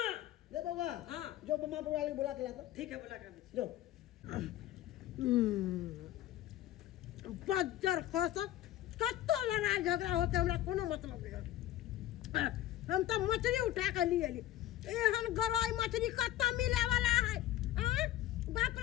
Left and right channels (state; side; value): quieter; right; 13.6 dB